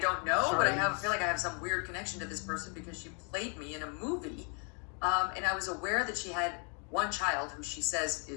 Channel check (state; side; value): quieter; right; 38.4 dB